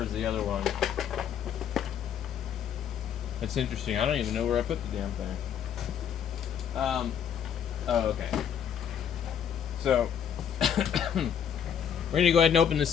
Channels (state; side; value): quieter; right; 8.5 dB